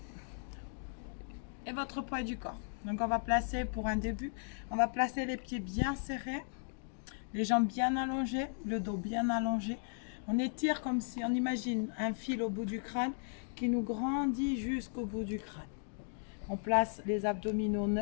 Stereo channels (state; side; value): silent; right; digital silence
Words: et votre poids du corps. Donc on va placer pour un début, on va placer les pieds bien serrés, les jambes bien allongées, le dos bien allongé. On étire comme si on imagine un fil au bout du crâne qui nous grandit jusqu'au bout du crâne. On place les abdominaux